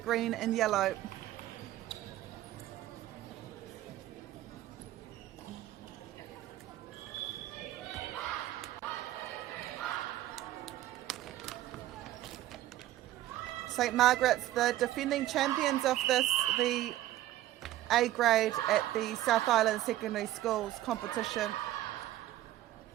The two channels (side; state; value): left; quieter; 14.4 dB